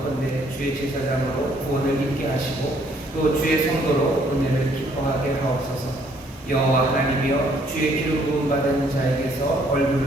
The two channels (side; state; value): both; normal; correlation 0.65